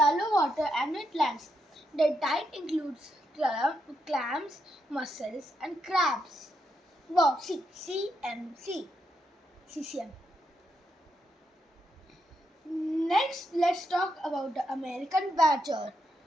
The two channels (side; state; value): both; normal; correlation 0.81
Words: water and wetlands. Their diet includes clams, mussels, and crabs. Wow, CCM. Next, let's talk about the American badger.